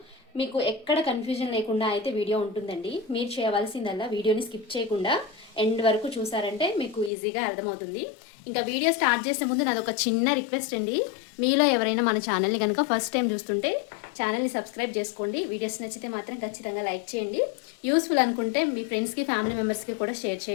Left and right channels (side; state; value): right; drops out; at 7.1 s